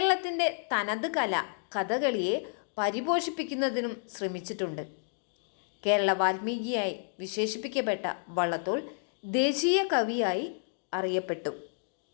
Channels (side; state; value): right; silent; digital silence